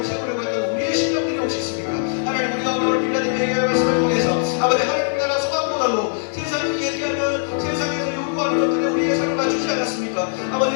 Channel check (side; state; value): right; silent; digital silence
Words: 세우려고 했던 우리의 심령들이 혹시 있습니까? 하나님 우리가 오늘 빌라델 얘기의 말씀을 통해서 아버지 하나님 나라 소망보다도 세상이 얘기하면 세상에서 요구하는 것들에 우리의 삶을 맞추지 않았습니까?